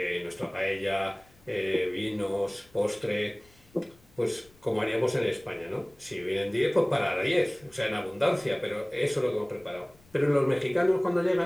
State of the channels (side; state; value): left; noise; rumble, 29 dB below the sound